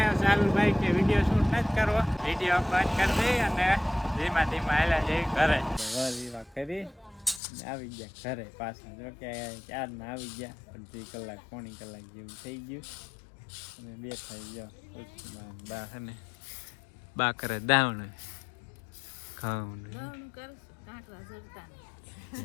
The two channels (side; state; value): right; drops out; at 7.4 s